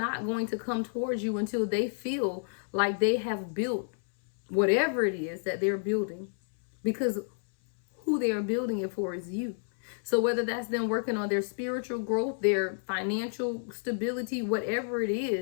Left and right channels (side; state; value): right; silent; 58 dB below the other